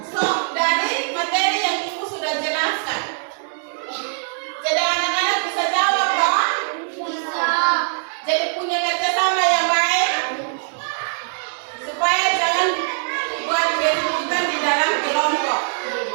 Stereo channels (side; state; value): left; silent; digital silence